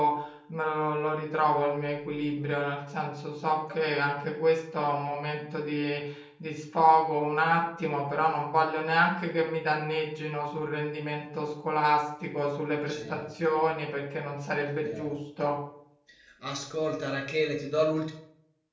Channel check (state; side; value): identical; both; correlation 1.00